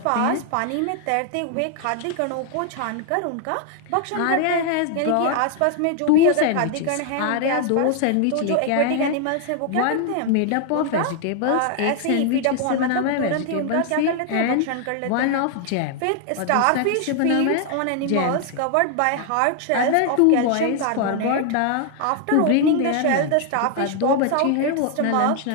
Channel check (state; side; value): different; both; correlation 0.00